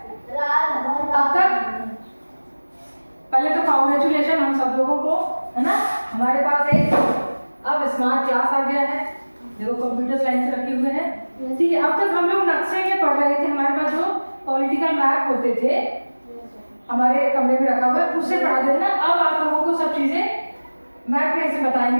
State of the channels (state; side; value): inverted; both; correlation -1.00